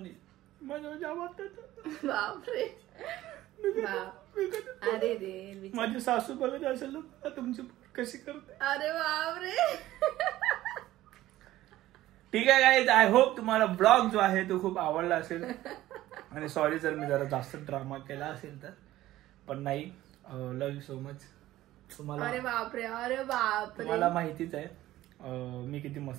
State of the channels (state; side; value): quieter; left; 15.2 dB